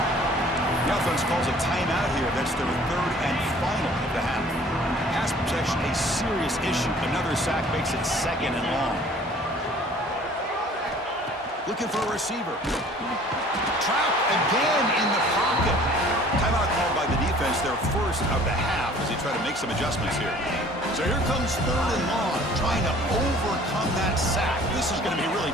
The offense calls a timeout here. That's their 3rd and final of the half. Pass protection, a serious issue. Another sack makes it 2nd and long. Looking for a receiver. Trapped again in the pocket. Timeout called by the defense, their 1st of the half, as they try to make some adjustments here. So here comes 3rd and long, trying to overcome that sack. This is going to be really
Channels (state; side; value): normal; both; correlation 0.52